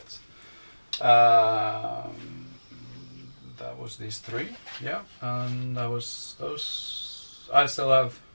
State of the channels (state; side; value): inverted; both; correlation -1.00